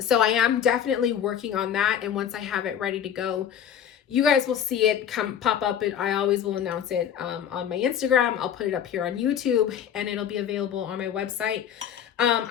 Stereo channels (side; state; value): right; quieter; 9.2 dB